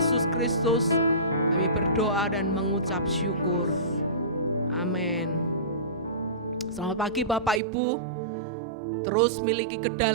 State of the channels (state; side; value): drops out; left; at 7.6 s